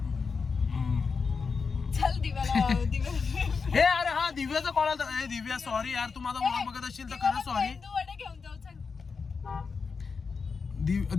चल दिव्याला हे अरे हा दिव्याचा कॉल आला ए दिव्या सॉरी यार तू माझा व्लॉग बघत असशील तर खरंच सॉरी मेंदू वडे घेऊन जाऊ चल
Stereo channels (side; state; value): right; quieter; 5.1 dB